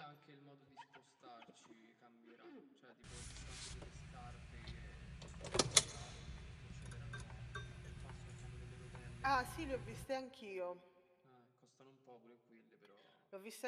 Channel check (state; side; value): identical; both; correlation 1.00